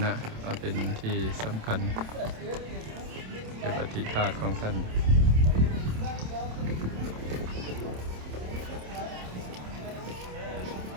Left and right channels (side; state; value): left; late; 27 ms